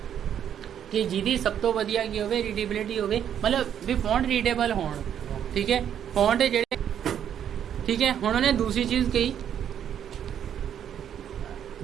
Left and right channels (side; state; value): left; quieter; 9.4 dB